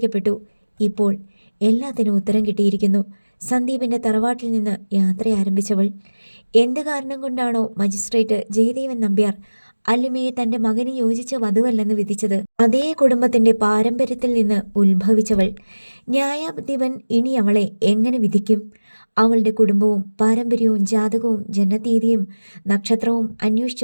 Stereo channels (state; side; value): inverted; both; correlation -1.00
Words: ഇപ്പോൾ എല്ലാത്തിനും ഉത്തരം കിട്ടിയിരിക്കുന്നു. സന്ദീപിൻ്റെ തറവാട്ടിൽ നിന്ന് യാത്ര ആരംഭിച്ചവൾ എന്ത് കാരണം കൊണ്ടാണോ മജിസ്ട്രേറ്റ് ജയദേവൻ നമ്പ്യാർ അല്ലിമയെ തൻ്റെ മകന് യോജിച്ച വധുവല്ലെന്ന് വിധിച്ചത്, അതേ കുടുംബത്തിൻ്റെ പാരമ്പര്യത്തിൽ നിന്ന് ഉത്ഭവിച്ചവൾ. ന്യായാധിപൻ ഇനി അവളെ എങ്ങനെ വിധിക്കും? അവളുടെ കുടുംബവും പാരമ്പര്യവും ജാതകവും ജനതീയതിയും നക്ഷത്രവും